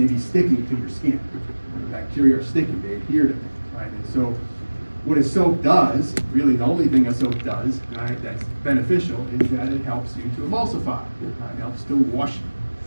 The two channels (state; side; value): inverted; both; correlation -1.00